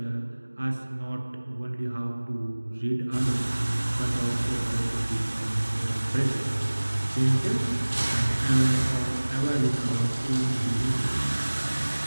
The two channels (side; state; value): both; inverted; correlation -1.00